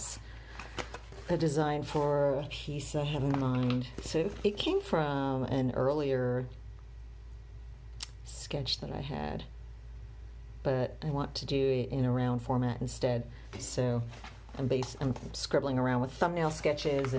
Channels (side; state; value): both; identical; correlation 1.00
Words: a design for a piece I have in mind. So it came from an earlier sketch that I had, but I want to do it in a round format instead. So I'm scribbling around with thumbnail sketches